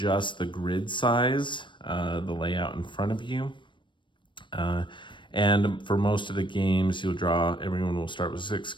the grid size, the layout in front of you. And for most of the games, everyone will start with 6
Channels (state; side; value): late; right; 0.23 ms